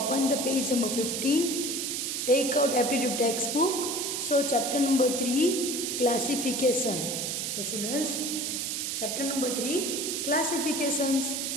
the page number 15. Take out aptitude textbook. So chapter number 3, classification. The students, chapter number 3, classifications.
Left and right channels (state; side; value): noise; right; hiss, 2 dB below the sound